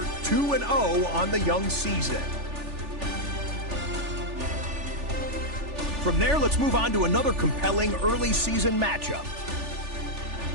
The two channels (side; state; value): left; late; 3.4 ms